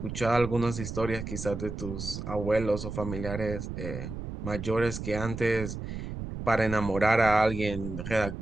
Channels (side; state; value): right; noise; rumble, 7 dB below the sound